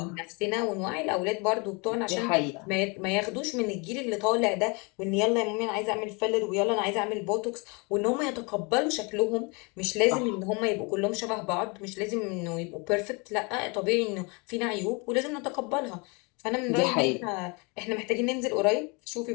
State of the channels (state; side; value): quieter; right; 30.3 dB